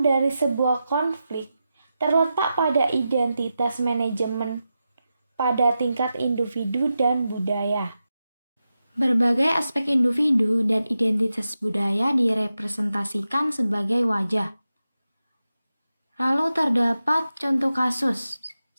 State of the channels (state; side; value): inverted; both; correlation -0.90